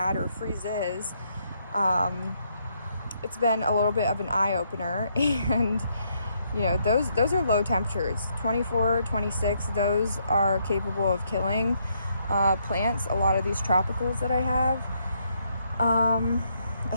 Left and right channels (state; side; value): inverted; both; correlation -0.74